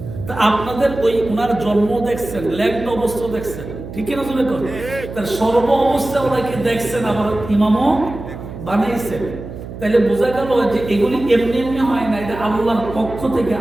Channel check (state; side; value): noise; right; hum, 11 dB below the sound